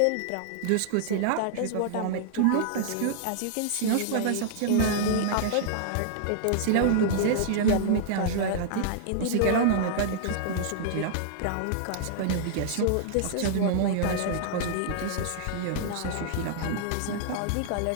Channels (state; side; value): different; both; correlation -0.01